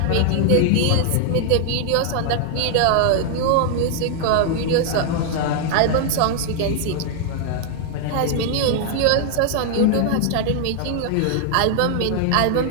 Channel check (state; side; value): different; both; correlation 0.00